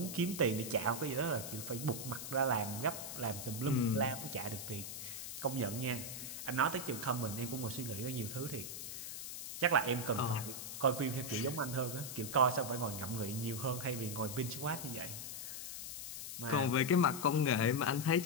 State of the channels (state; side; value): noise; left; hiss, 7 dB below the sound